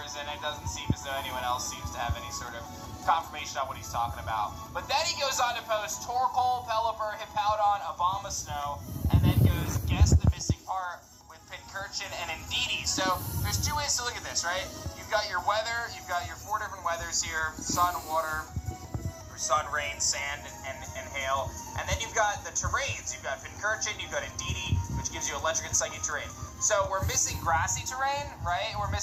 and it doesn't seem as though anyone else seems to have any sort of confirmation on what he's talking about. But then he goes on to post Torkoal, Pelipper, Hippowdon, Abomasnow, and then goes guess the missing part with Pincurchin and Indeedee. So there's 2 ways to look at this, right? You've got your weather, you've got your 4 different weathers here: sun, water, or sun, rain, sand, and hail. And then you've got the terrains. You've got Pincurchin, you've got Indeedee, which gives you electric and psychic terrain. So we're missing grassy terrain, right? And we're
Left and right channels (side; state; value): both; identical; correlation 1.00